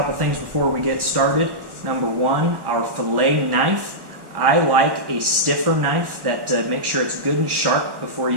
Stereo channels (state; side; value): late; left; 1.1 ms